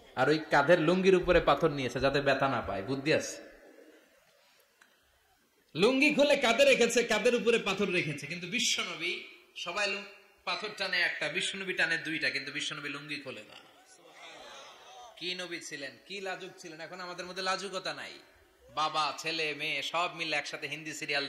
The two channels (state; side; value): identical; both; correlation 1.00